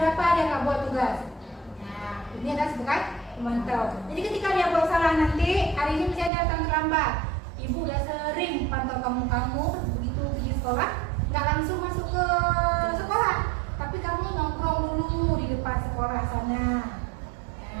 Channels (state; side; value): drops out; left; at 6.3 s